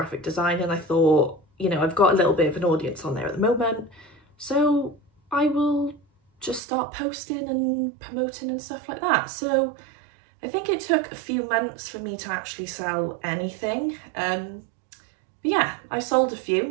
design and I thought you know, I've got a little bit of an audience on there at the moment, so I will just start posting and promoting and stuff like that. So I think it took a few months for me to actually sell anything. But yeah, I sold a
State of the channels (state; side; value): drops out; left; at 6.6 s